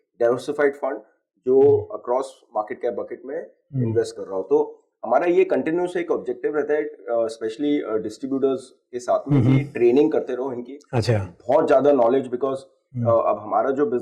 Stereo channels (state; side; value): identical; both; correlation 1.00